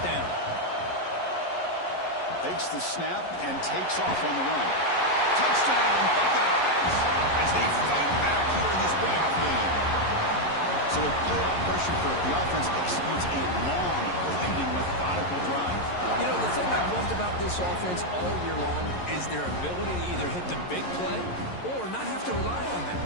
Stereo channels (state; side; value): late; right; 11 ms